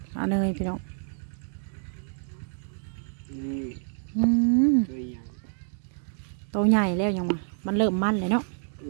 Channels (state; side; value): silent; left; 59 dB below the other